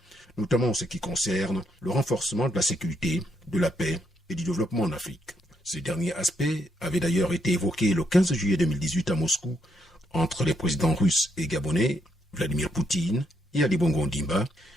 notamment en ce qui concerne le renforcement de la sécurité, de la paix et du développement en Afrique. Ce dernier aspect avait d'ailleurs été évoqué le 15 juillet 2018 à Moscou entre les présidents russes et gabonais, Vladimir Poutine et Ali Bongo Ondimba,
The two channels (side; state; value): both; normal; correlation 0.76